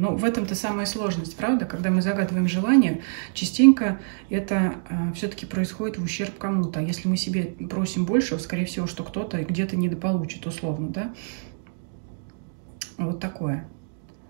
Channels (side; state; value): left; silent; digital silence